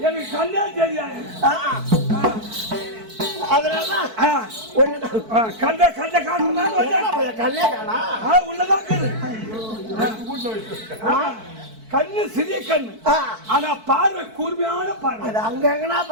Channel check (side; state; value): left; late; 4.5 ms